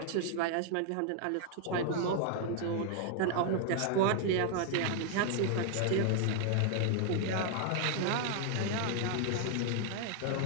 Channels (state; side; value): different; both; correlation 0.00